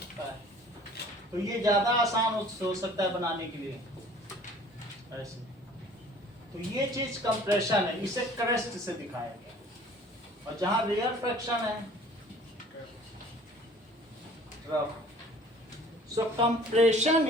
है। तो ये ज्यादा आसान हो सकता है बनाने के लिए ऐसे। तो ये चीज कंप्रेशन है, इसे क्रस्ट से दिखाया गया। और जहां रेयरफेक्शन है, trough. So compression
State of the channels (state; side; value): normal; both; correlation 0.50